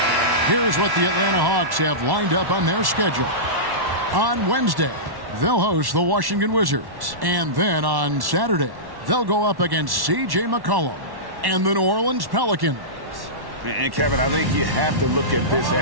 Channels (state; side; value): late; left; 1.1 ms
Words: Here's what the Atlanta Hawks have lined up on their schedule. On Wednesday, they'll host the Washington Wizards. And then on Saturday, they'll go up against C.J. McCollum and the New Orleans Pelicans. And Kevin, I think you have to look at this